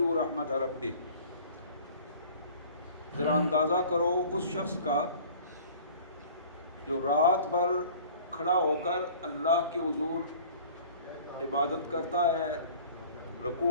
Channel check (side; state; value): both; inverted; correlation -0.46